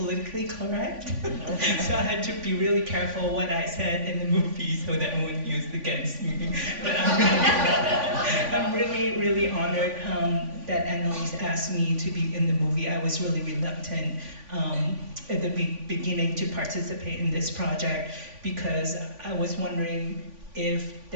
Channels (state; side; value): late; left; 3.5 ms